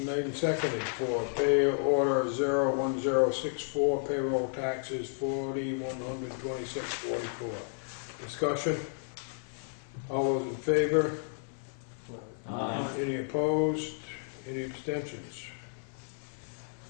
made and seconded for pay order 01064, payroll taxes $4,126.44. Discussion? All those in favor? Aye. Any opposed? Any abstentions?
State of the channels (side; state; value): right; silent; 56 dB below the other